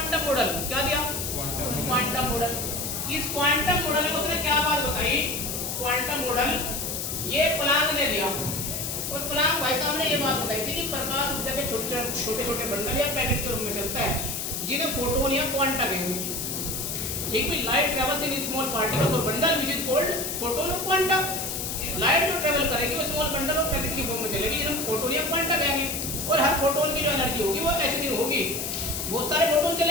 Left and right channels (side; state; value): left; noise; hiss, 3 dB below the sound